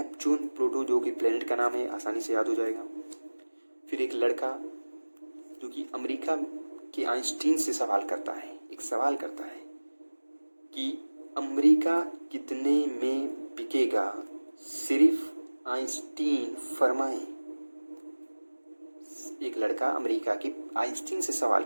प्लूटो जो कि प्लेनेट का नाम है, आसानी से याद हो जाएगा। फिर एक लड़का जो कि अमेरिका के आइंस्टीन से सवाल करता है, एक सवाल करता है कि अमेरिका कितने में बिकेगा, सिर्फ आइंस्टीन फरमाएं। एक लड़का अमेरिका के आइंस्टीन से सवाल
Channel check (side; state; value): both; inverted; correlation -1.00